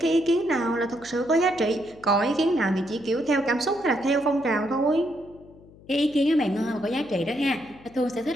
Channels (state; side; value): noise; left; hum, 23 dB below the sound